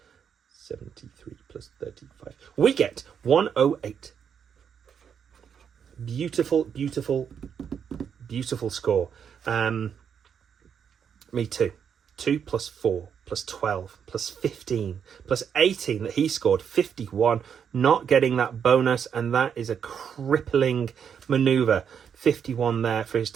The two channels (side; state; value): left; quieter; 7.6 dB